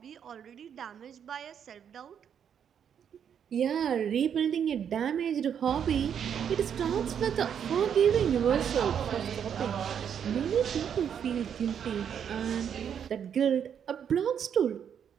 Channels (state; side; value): quieter; left; 8.3 dB